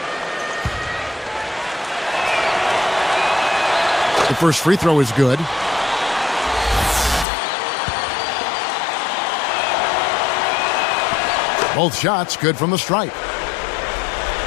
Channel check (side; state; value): right; drops out; at 7.2 s